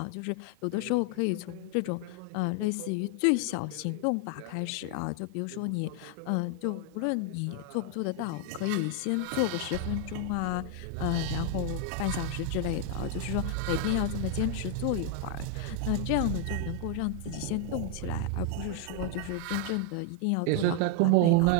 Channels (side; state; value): both; different; correlation 0.00